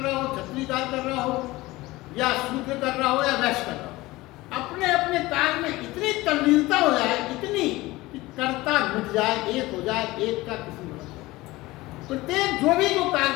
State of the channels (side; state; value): right; quieter; 19.6 dB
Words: हो, क्षत्रिय कार्य कर रहा हो, या शूद्र कर रहा हो या वैश्य कर रहा हो, अपने अपने कार्य में इतनी तल्लीनता हो जाए, इतनी कि कर्ता मिट जाए, एक हो जाए, एक का किसी में प्रत्येक जो भी जो कार्य